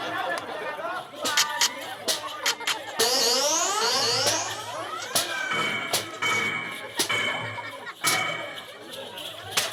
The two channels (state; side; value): identical; both; correlation 1.00